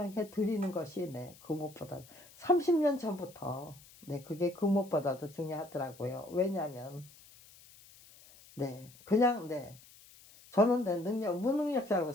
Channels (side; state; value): left; noise; hiss, 23 dB below the sound